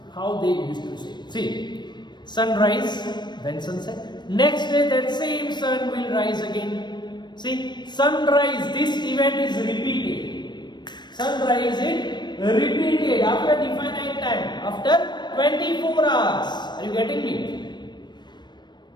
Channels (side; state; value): right; late; 0.21 ms